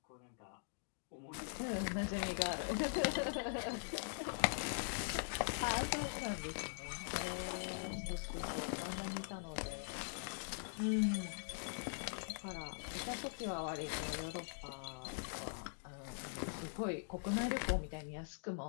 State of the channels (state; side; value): silent; right; digital silence